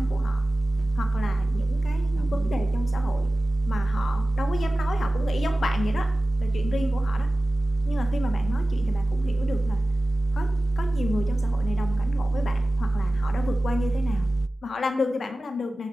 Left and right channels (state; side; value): normal; both; correlation 0.97